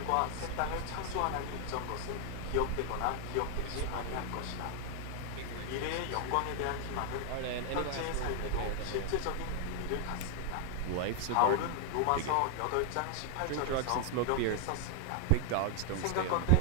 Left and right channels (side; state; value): both; different; correlation 0.00